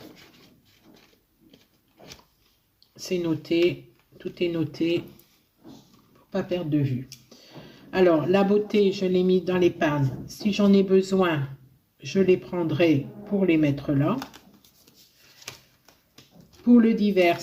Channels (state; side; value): identical; both; correlation 1.00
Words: C'est noté, tout est noté pour pas perdre de vue. Alors, la beauté, je l'ai mis dans l'épargne. Si j'en ai besoin, je les prendrai pour les mettre là. Pour le divers,